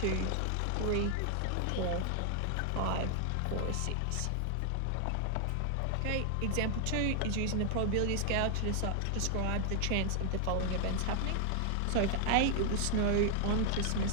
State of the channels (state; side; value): different; both; correlation 0.00